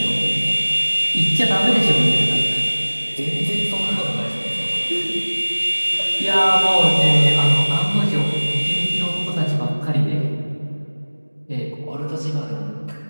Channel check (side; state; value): both; inverted; correlation -1.00